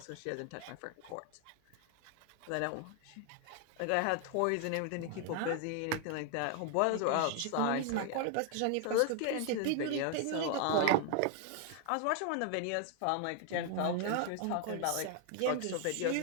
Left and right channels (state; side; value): different; both; correlation 0.00